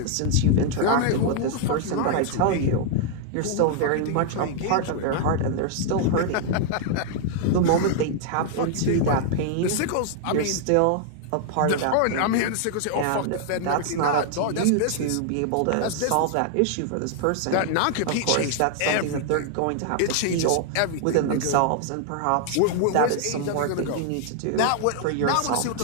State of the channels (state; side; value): different; both; correlation 0.00